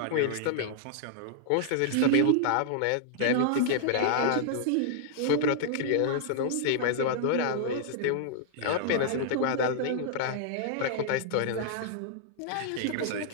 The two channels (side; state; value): both; different; correlation -0.01